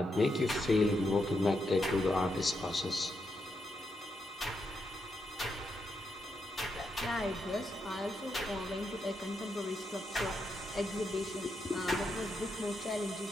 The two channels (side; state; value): both; normal; correlation 0.82